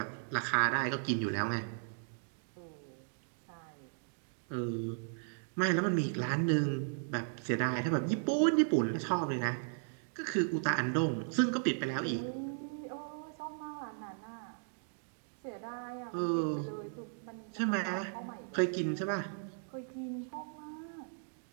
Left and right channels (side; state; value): left; silent; digital silence